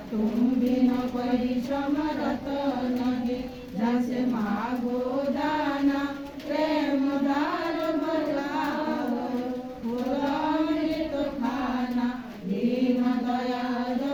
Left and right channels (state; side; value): identical; both; correlation 1.00